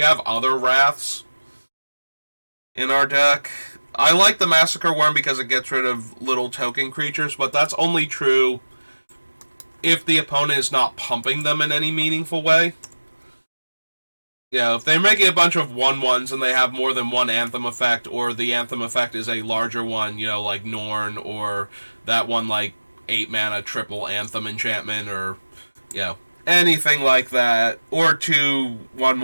other Wraths in our deck. I like the Massacre Worm because it gets rid of little token creatures, but that's only true if the opponent is not pumping them in any meaningful way. If they're making a bunch of 1/1s and they have more than one Anthem effect, or the Anthem effect is a larger one, like Norn, or that one, 8 mana triple Anthem enchantment, or, anything like that, or 2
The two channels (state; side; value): inverted; both; correlation -1.00